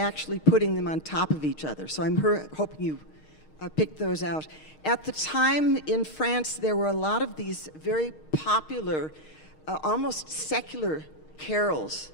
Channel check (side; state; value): right; late; 6.5 ms